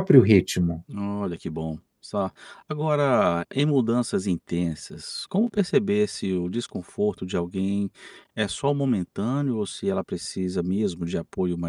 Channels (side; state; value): both; identical; correlation 1.00